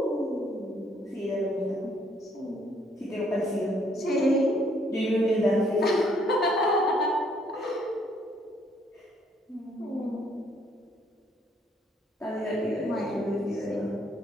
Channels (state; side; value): normal; both; correlation 0.67